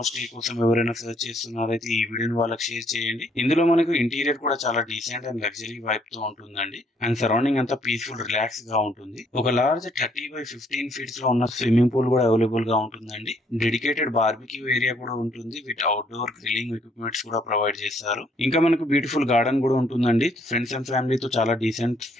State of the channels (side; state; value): both; normal; correlation 0.67